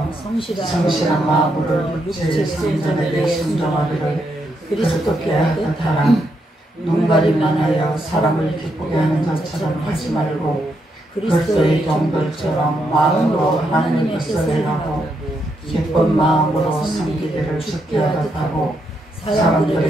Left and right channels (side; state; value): both; normal; correlation 0.79